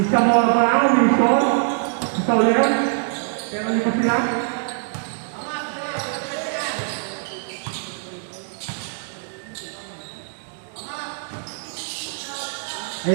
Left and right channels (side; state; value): left; silent; digital silence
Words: Zamora pa lang, Wilson. Si Sauler. Pero hindi pa sila.